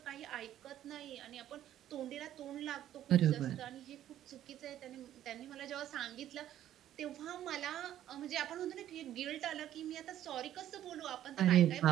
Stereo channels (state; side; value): quieter; left; 11.9 dB